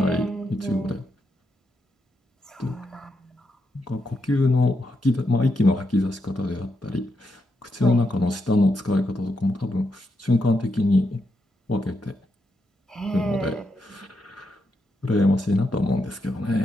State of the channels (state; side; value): normal; both; correlation 0.82